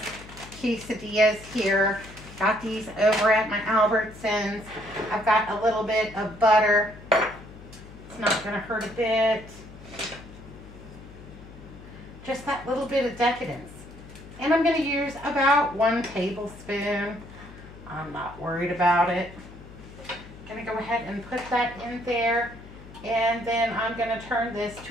quesadillas here. Got these over at my Albertsons. I've got a little bit of butter. It's not going to hurt a bit. Just that little bit of decadence. And I'm going to use about 1 tablespoon. I'm not worried about it. I'm going to go ahead and put that in there. And then I'm going to turn this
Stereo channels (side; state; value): left; noise; hum, 17 dB below the sound